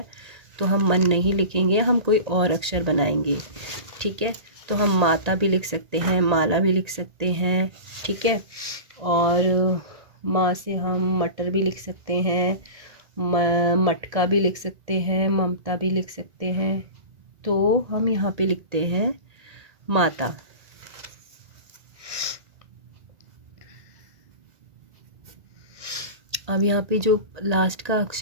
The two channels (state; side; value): late; left; 1.8 ms